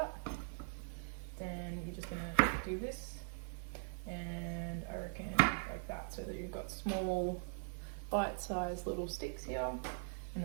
Then you're just gonna do this, and I reckon like that, so that you've got small bite-sized little sticks here, and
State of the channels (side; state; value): left; silent; 50 dB below the other